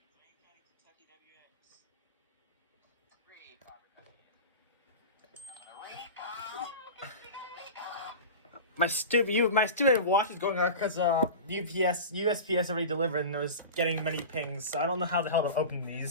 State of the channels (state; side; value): inverted; both; correlation -0.30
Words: My stupid watch is going out because USPS already delivered and it was getting many pings, so I don't know how the hell to open